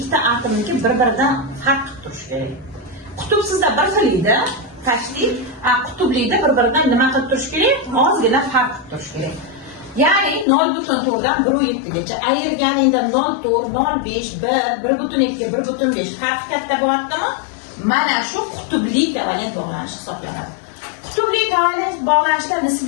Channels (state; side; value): drops out; right; at 10.5 s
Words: atomniki bir-biridan farq qilib turishi kerak. Qutubsizda bir xil edi, tashkil, qutublida bir-biridan nima qilib turishi kerak? Ozgina farq qilib turishi kerak. Ya'ni 0.4 dan 1.7 gacha ayirganingda 0.4, 0.5, 1, 1.2, 1.5 farq katta bo'ladimi? Mana shu qutubli kovalent bog'lanish hisoblanadi. Qutubli kovalent bog'lanishda